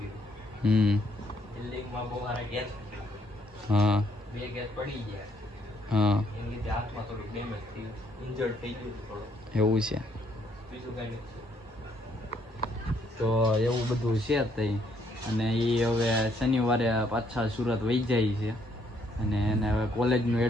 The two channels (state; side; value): normal; both; correlation 0.70